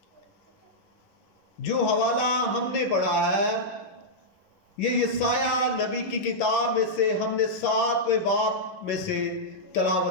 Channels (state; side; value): late; right; 11 ms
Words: जो हवाला हमने पढ़ा है ये यशाया नबी की किताब में से हमने 7वें बाब में से